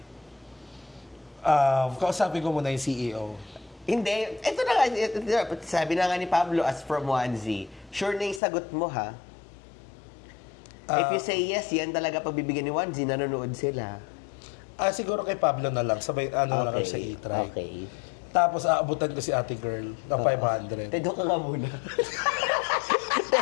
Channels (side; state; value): right; drops out; at 8.4 s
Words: Kausapin ko muna yung CEO. Hindi. Ito na nga. Sabi na nga ni Pablo as from onesie. Sure na yung sagot mo ha? If you say yes, yan talaga pagbibigyan ni onesie, nanonood sila. Siguro kay Pablo na lang. Sabay, ano lang sa e-try. Okay. Tapos, aabutan ko si ate girl na 500. Doon ka nga muna.